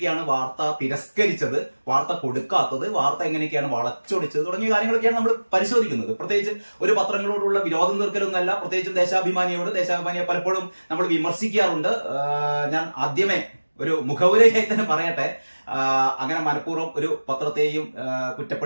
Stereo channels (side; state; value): both; inverted; correlation -1.00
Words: വാർത്ത തിരസ്കരിച്ചത്, വാർത്ത കൊടുക്കാത്തത്, വാർത്ത എങ്ങനെയൊക്കെയാണ് വളച്ചൊടിച്ചത് തുടങ്ങിയ കാര്യങ്ങളൊക്കെയാണ് നമ്മൾ പരിശോധിക്കുന്നത്. പ്രത്യേകിച്ച് ഒരു പത്രങ്ങളോടുള്ള വിരോധം തീർക്കലൊന്നല്ല. പ്രത്യേകിച്ചും ദേശാഭിമാനിയെ പലപ്പോഴും നമ്മൾ വിമർശിക്കാറുണ്ട്. ഞാൻ ആദ്യമേ ഒരു മുഖവുരയായി തന്നെ പറയട്ടെ, അങ്ങനെ മനഃപൂർവ്വം ഒരു പത്രത്തെയും